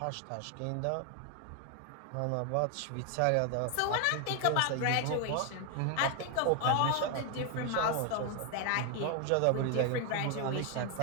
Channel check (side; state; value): both; different; correlation 0.01